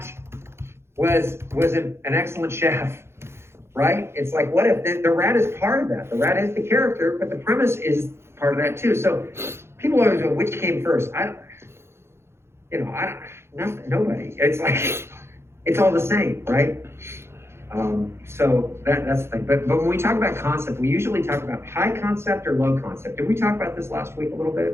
was an excellent chef, right? It's like, what if the rat is part of that? The rat is the character, but the premise is part of that too. So people always go, which came first? Nobody. It's like, it's all the same, right? So that's the thing. But when we talk about concept, we usually talk about high concept or low concept. Did we talk about this last week a little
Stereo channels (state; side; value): late; left; 0.12 ms